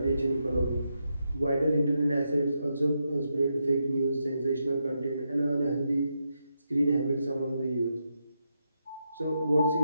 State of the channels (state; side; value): inverted; both; correlation -0.84